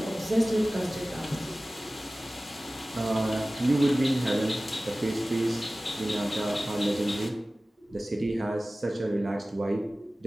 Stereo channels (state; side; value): normal; both; correlation 0.97